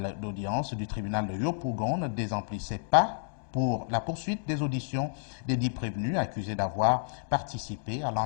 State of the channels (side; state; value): right; silent; digital silence